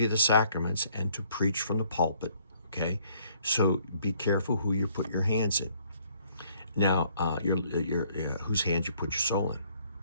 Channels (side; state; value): both; inverted; correlation -0.63